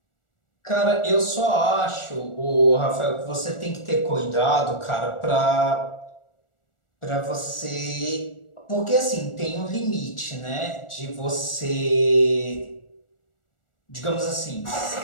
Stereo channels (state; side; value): late; right; 1.4 ms